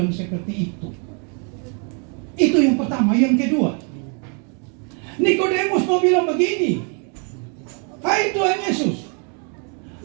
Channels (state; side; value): quieter; left; 38.9 dB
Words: seperti itu. Itu yang pertama. Yang kedua, Nikodemus mau bilang begini, "Hai Tuhan Yesus,